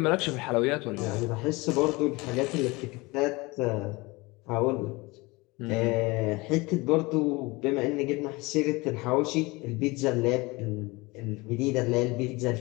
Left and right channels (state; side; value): quieter; right; 23.7 dB